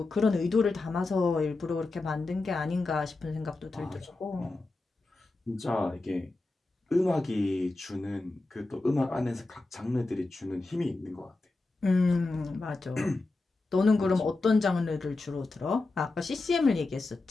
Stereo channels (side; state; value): right; quieter; 3.3 dB